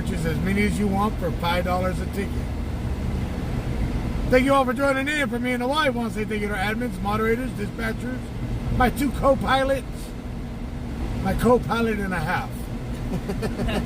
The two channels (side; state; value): both; identical; correlation 1.00